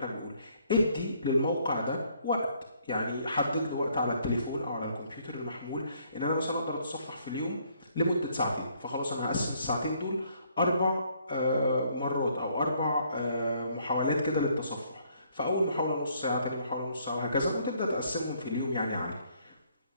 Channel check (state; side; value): inverted; both; correlation -0.66